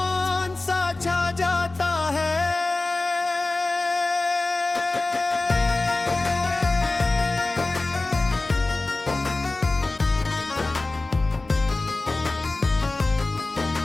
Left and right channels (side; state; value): right; quieter; 3.1 dB